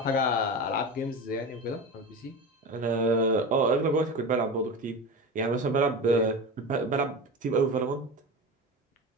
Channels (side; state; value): both; normal; correlation 0.27